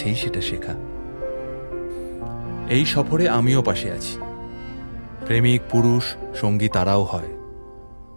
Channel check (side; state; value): both; inverted; correlation -1.00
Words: সেটা শেখা। এই সফরে আমিও পাশে আছি, প্রেমিক পুরুষ সঙ্গী তারাও হয়।